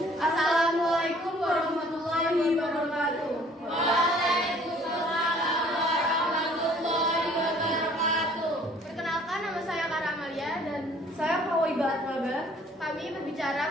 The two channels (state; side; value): normal; both; correlation 0.56